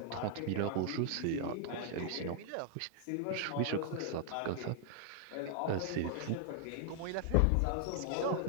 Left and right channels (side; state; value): both; different; correlation 0.00